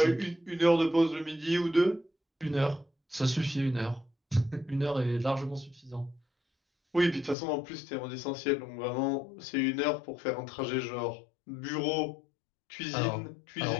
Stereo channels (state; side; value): drops out; right; at 7.4 s